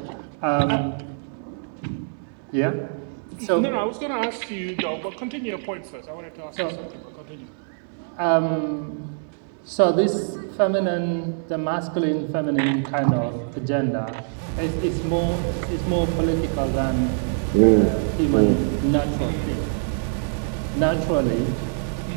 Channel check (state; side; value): silent; left; digital silence